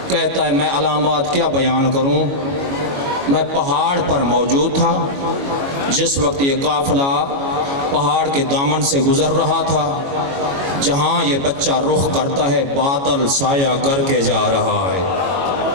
کہتا ہے میں علامات کیا بیان کروں، میں پہاڑ پر موجود تھا جس وقت یہ قافلہ پہاڑ کے دامن سے گزر رہا تھا، جہاں یہ بچہ رخ کرتا ہے بادل سایہ کر کے جا رہا ہے۔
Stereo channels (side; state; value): left; late; 22 ms